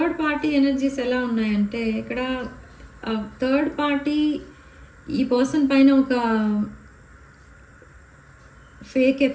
party energies ఎలా ఉన్నాయంటే ఇక్కడ థర్డ్ పార్టీ ఈ పర్సన్ పైన ఒక ఫేక్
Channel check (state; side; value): identical; both; correlation 1.00